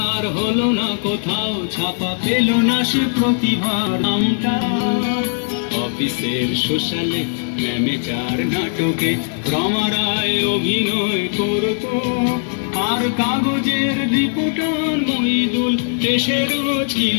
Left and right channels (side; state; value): right; silent; 61 dB below the other